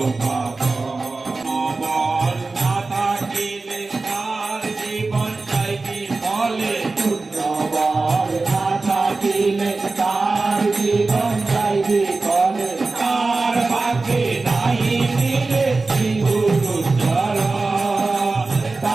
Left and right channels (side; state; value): left; quieter; 3.7 dB